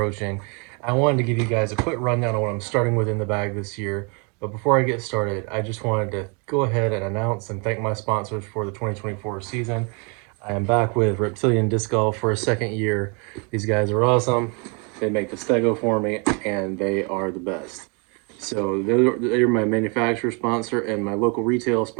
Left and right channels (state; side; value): quieter; left; 34.3 dB